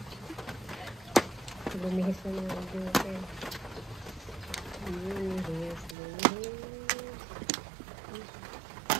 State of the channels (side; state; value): left; drops out; at 6.0 s